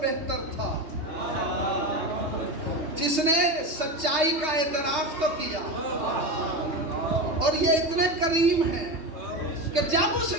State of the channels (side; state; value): left; late; 3.2 ms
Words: بہتر تھا جس نے سچائی کا اعتراف تو کیا, اور یہ اتنے کریم ہیں کہ جب اس